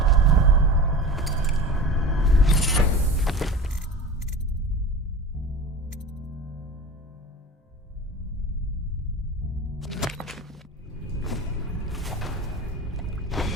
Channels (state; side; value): normal; both; correlation 0.34